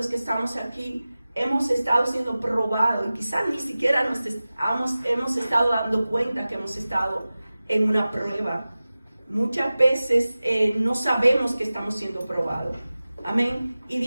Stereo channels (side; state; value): both; inverted; correlation -0.97